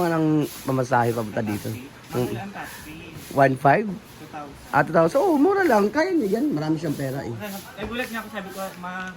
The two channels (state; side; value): identical; both; correlation 1.00